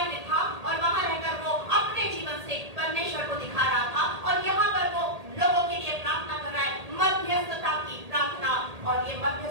में था, और वहां रहकर वो अपने जीवन से परमेश्वर को दिखा रहा था। और यहाँ पर वो लोगों के लिए प्रार्थना कर रहा है, मध्यस्थता की प्रार्थना। और ये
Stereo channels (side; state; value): left; late; 1.8 ms